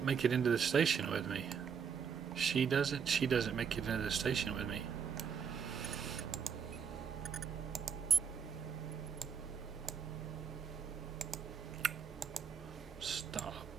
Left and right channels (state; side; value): quieter; left; 6.9 dB